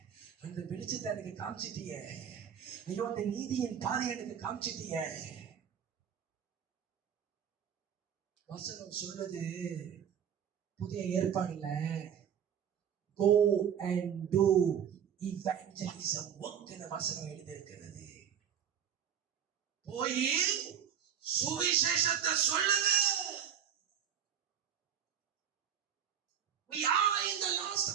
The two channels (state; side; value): quieter; left; 8.7 dB